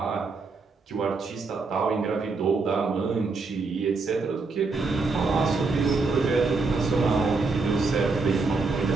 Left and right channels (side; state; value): left; quieter; 4.1 dB